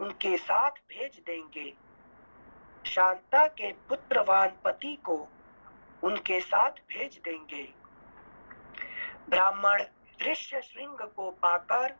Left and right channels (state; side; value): inverted; both; correlation -1.00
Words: साथ भेज देंगे। शांता के पुत्रवान पति को उनके साथ भेज देंगे। ब्राह्मण ऋष्यशृंग को पाकर